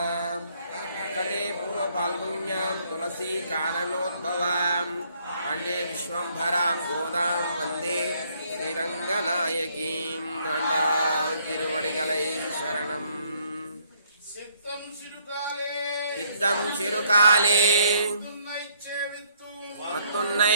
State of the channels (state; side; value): inverted; both; correlation -0.67